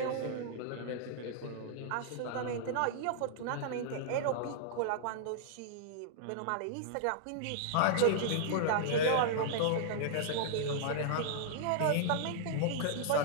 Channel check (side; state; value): both; different; correlation -0.01